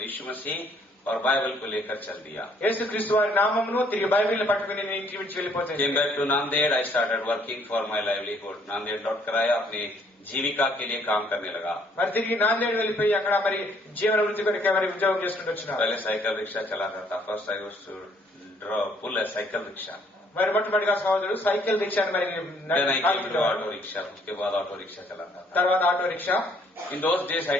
यीशु मसीह और बाइबल को लेकर चल दिया. యేసుక్రీస్తు వారి నామమును తిరిగి బైబిల్ని పట్టుకుని నేను ఇంటికి విడిచి వెళ్ళిపోతాను. Came back to Nanded. I started working for my livelihood. Nanded लौटकर आया, अपनी जीविका के लिए काम करने लगा. మరి తిరిగి నాందేడ్ వెళ్ళిపోయి అక్కడ మరి జీవన వృత్తి కొరకు మరి ఉద్యోగం చేసుకుంటూ వచ్చినారు. पहले साइकिल रिक्शा चलाता था. First I used to pull a cycle rickshaw. మరి మొట్టమొదటిగా సహోదరుడు సైకిల్ రిక్షాని మరి Then I came to auto rickshaw. उसके बाद auto rickshaw चलाता था. తర్వాత auto rickshaw. In those days I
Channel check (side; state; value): both; normal; correlation 0.64